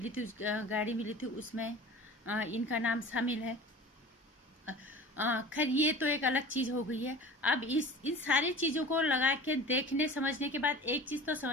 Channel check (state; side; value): normal; both; correlation 0.39